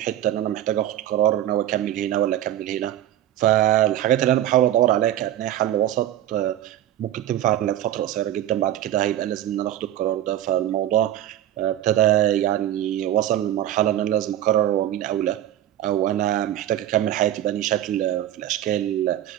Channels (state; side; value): quieter; left; 12.3 dB